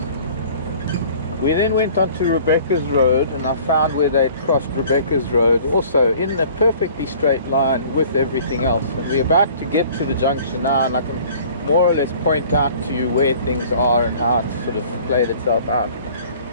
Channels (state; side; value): inverted; both; correlation -0.50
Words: We then went on to Rebecca's Road, and I found where they'd crossed Rebecca's Road, also in a perfectly straight line with everything else. And we're about to get to the junction now, and I can more or less point out to you where things are and how it's sort of played itself out.